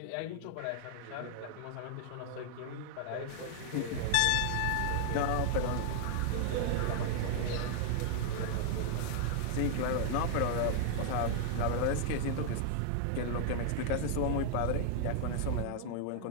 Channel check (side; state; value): both; different; correlation -0.01